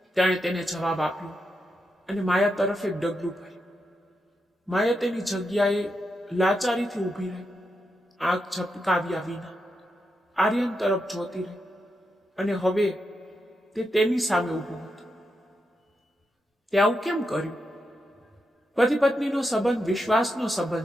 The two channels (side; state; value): both; normal; correlation 0.85